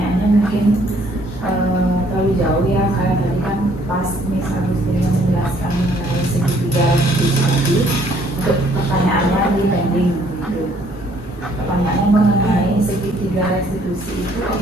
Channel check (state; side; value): normal; both; correlation 0.63